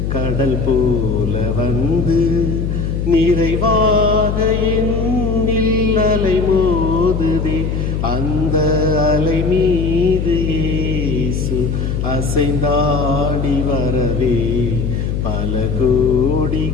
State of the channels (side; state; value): left; noise; hum, 1 dB below the sound